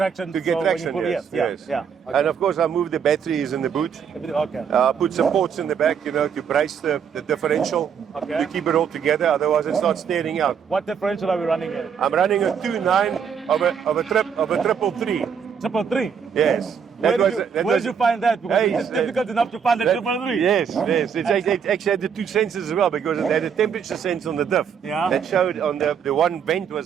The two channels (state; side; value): quieter; left; 7.2 dB